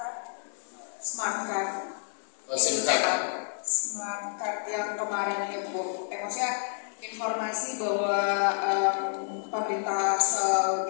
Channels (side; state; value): right; silent; digital silence